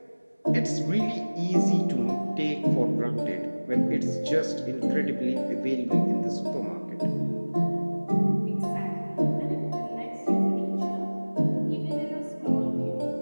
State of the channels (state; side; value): inverted; both; correlation -1.00